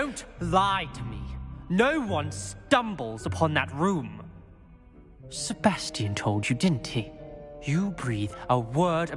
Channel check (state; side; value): identical; both; correlation 1.00